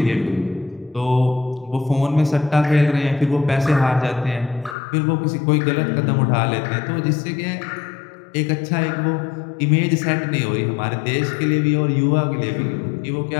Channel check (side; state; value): right; drops out; at 4.8 s